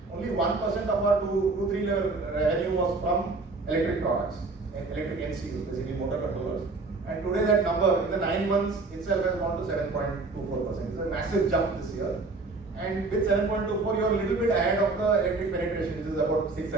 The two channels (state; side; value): quieter; left; 3.6 dB